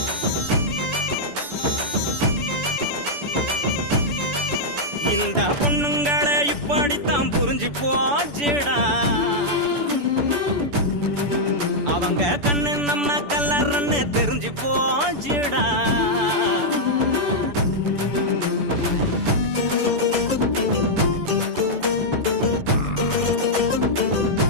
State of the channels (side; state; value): left; late; 6.9 ms